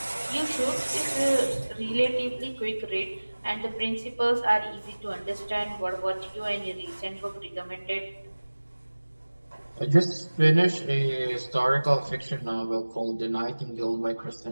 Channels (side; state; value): both; inverted; correlation -1.00